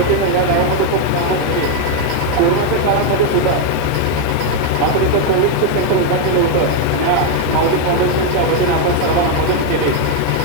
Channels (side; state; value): both; different; correlation 0.01